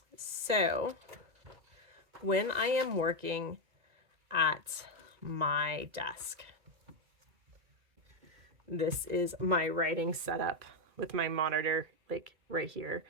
So when I am working at my desk, this is my writing setup with my monitor, like right here.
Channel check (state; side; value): late; left; 1.9 ms